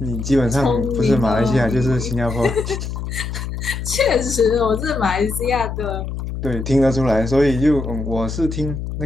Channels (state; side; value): noise; left; hum, 6 dB below the sound